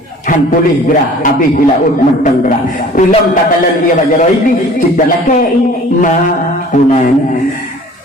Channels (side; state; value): both; normal; correlation 0.48